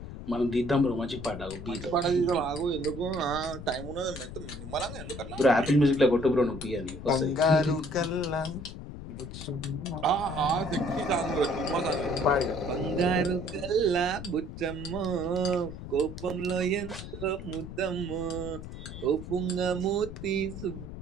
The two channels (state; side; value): noise; left; rumble, 10 dB below the sound